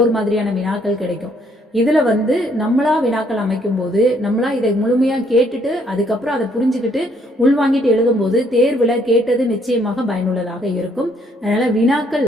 மாதிரியான வினாக்கள் கிடைக்கும். இதுல வந்து நம்மளா வினாக்கள் அமைக்கும் போது நம்மளா இதை முழுமையா கேட்டுட்டு அதுக்கப்புறம் அதை புரிஞ்சுக்கிட்டு உள்வாங்கிட்டு எழுதும் போது தேர்வுல கேட்டது நிச்சயமாக பயனுள்ளதாக இருக்கும். அதனால வினாக்கள்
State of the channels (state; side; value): normal; both; correlation 0.67